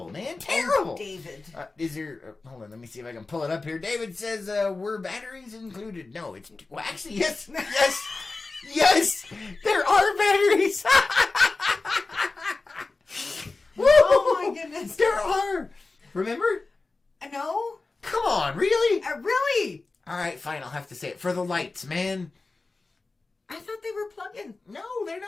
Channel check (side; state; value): right; quieter; 3.6 dB